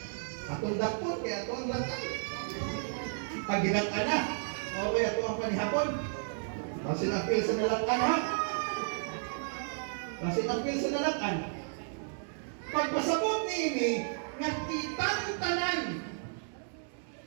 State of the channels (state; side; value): silent; left; digital silence